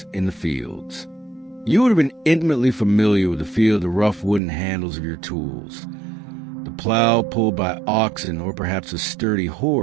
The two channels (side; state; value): left; drops out; at 4.4 s